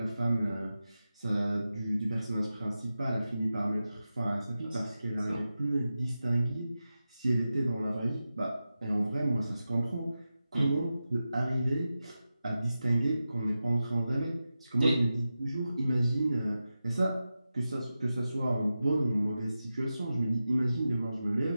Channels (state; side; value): inverted; both; correlation -0.92